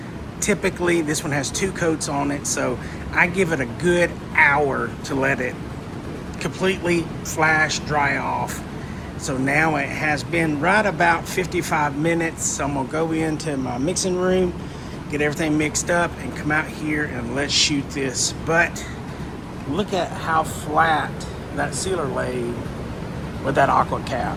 Typically, this one has 2 coats on it, so I give it a good hour to let it completely flash dry off. So now it has been right about 55 minutes. So I'm gonna go into my mixing room, get everything mixed up, and come out here and let's shoot this. But look at how flat that sealer laid with that aqua cap.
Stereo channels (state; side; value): identical; both; correlation 1.00